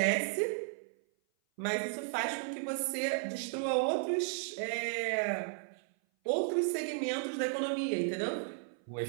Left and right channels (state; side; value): silent; left; 55 dB below the other